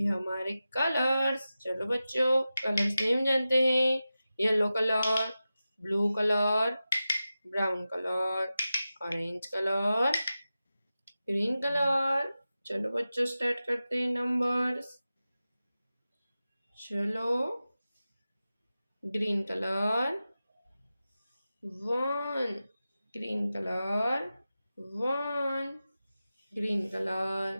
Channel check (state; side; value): inverted; both; correlation -0.94